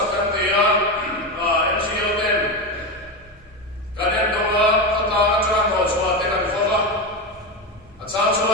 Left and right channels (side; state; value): both; normal; correlation 0.16